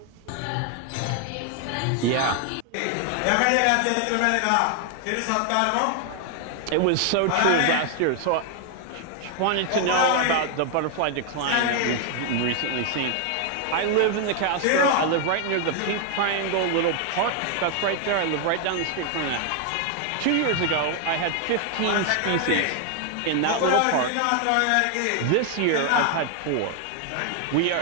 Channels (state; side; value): different; both; correlation 0.00